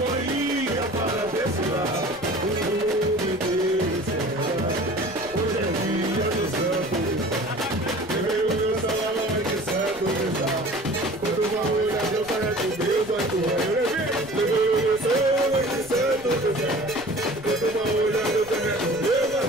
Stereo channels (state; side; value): noise; left; rumble, 20 dB below the sound